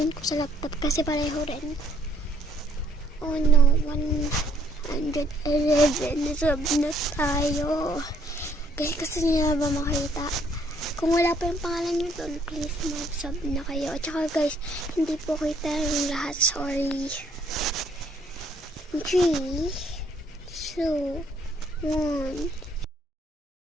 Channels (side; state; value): both; normal; correlation 0.66